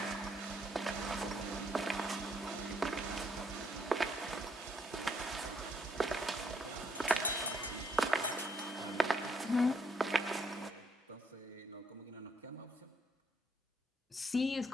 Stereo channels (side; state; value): both; normal; correlation 0.70